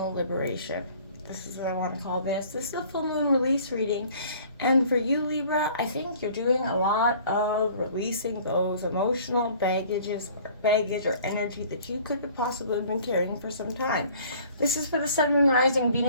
liberation. This is what I want to call this. This is a full moon release reading. And for you, Libra, I think you're doing a lot of releasing those emotional baggage or energy that you could have possibly been carrying for some time. This is for the Sun, Moon, Rising,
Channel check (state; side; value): inverted; both; correlation -0.52